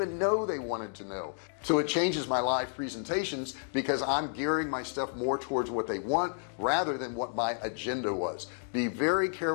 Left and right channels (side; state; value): right; silent; 57 dB below the other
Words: know they wanted to know. So it changes my live presentations because I'm gearing my stuff more towards what they want rather than what my agenda was. Be very